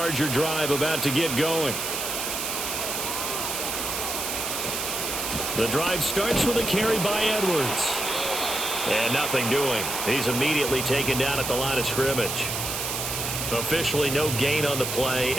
drive about to get going. The drive starts with a carry by Edwards. And nothing doing. He's immediately taken down at the line of scrimmage. Officially no gain on the play,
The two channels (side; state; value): right; noise; hiss, 3 dB below the sound